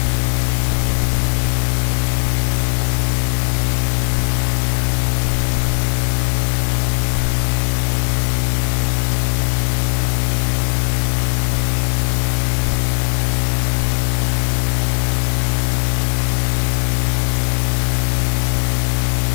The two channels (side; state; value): right; silent; digital silence